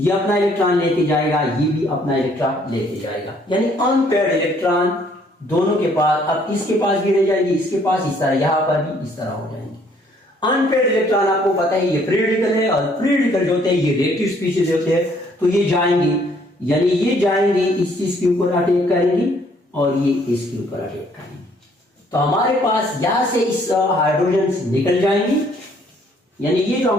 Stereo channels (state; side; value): normal; both; correlation 0.64